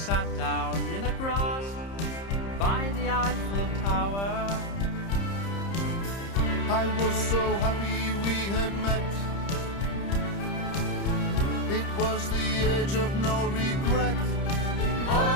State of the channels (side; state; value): right; late; 30 ms